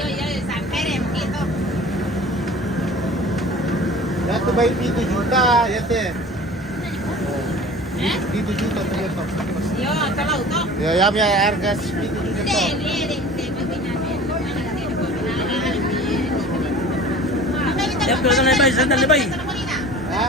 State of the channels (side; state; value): both; normal; correlation 0.42